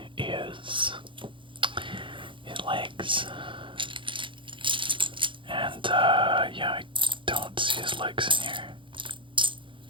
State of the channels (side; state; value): left; late; 0.24 ms